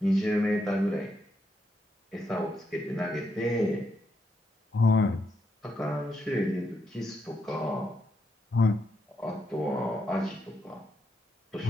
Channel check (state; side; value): normal; both; correlation 0.81